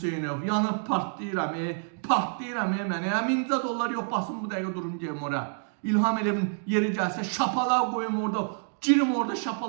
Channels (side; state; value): left; silent; 59 dB below the other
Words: yanıb partlayıram, mənə. 1000 dollar yox, basın bu dəqiqə durum deyəm ora. İlham Əliyevin yeri gəlsə şapalaq qoyum orada, girim orada